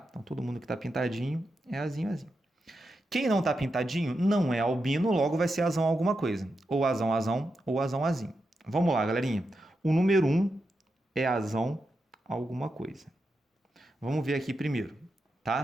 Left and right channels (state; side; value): normal; both; correlation 0.87